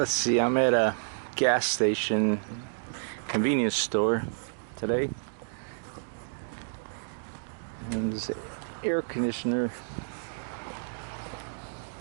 see, I'm at a gas station convenience store today, and there's an air conditioner.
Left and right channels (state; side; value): silent; left; digital silence